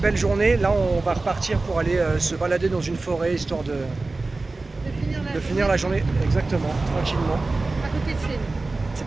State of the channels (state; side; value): quieter; left; 3.4 dB